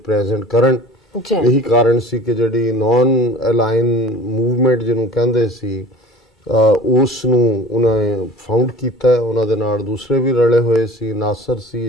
प्रेजेंट करन। यही कारण सी कि जिहड़ी नॉन अलाइन मूवमेंट जिन्हों कहंदे सी उस नूं उन्हें फाउंड कीता है। उन्हां दे नाल दूसरे भी रले होए सी, नासर सी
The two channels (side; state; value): both; normal; correlation 0.44